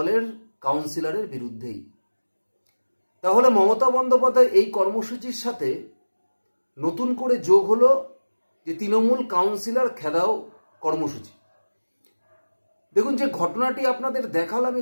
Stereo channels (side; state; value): both; inverted; correlation -1.00